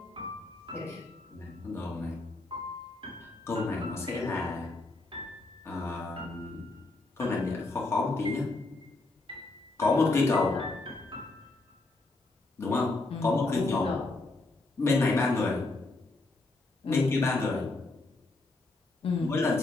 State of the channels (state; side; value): quieter; right; 3.2 dB